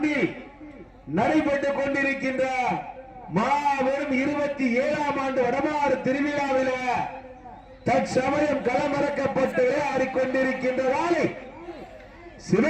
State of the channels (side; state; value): both; identical; correlation 1.00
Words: நடைபெற்றுக் கொண்டிருக்கின்ற மாபெரும் 27ஆம் ஆண்டு வடமாறு திருவிழாவில் தற்சமயம் களமிறக்கப்பட்டு ஆடிக்கொண்டிருக்கின்ற வாழை